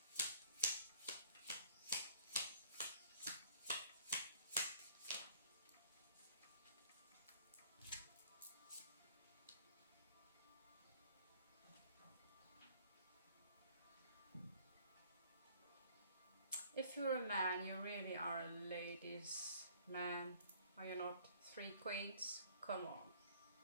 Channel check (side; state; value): both; inverted; correlation -0.55